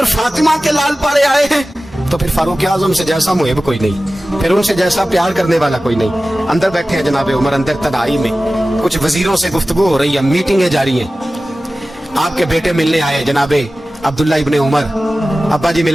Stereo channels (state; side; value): normal; both; correlation 0.96